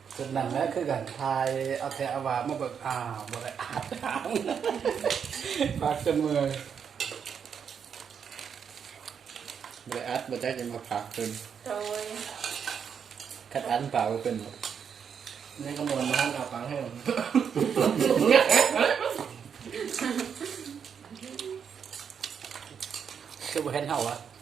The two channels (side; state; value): left; quieter; 7.2 dB